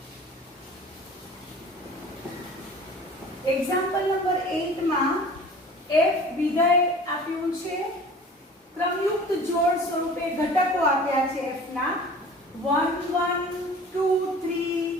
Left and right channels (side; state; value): both; normal; correlation 0.43